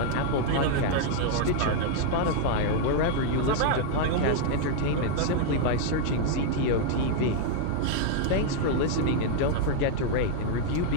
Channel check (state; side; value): different; both; correlation 0.00